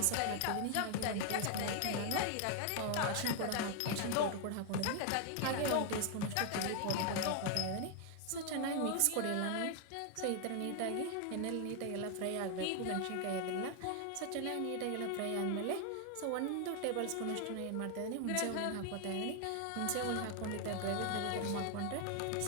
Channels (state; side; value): different; both; correlation 0.00